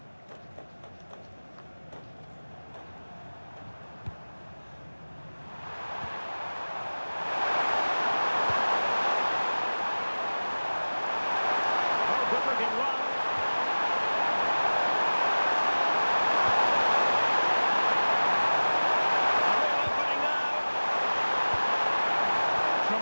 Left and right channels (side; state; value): both; inverted; correlation -1.00